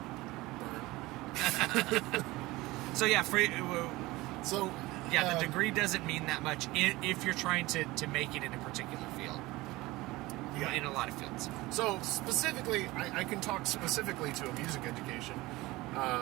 So, yeah, the degree doesn't mean that much if you're trying to make it in a particular field. Yeah. In a lot of fields. So, specifically, I can talk specifically to a music education.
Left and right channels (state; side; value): quieter; left; 20.1 dB